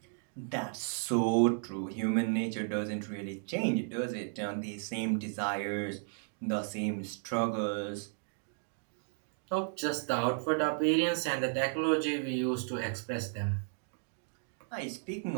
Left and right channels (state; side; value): silent; left; 55 dB below the other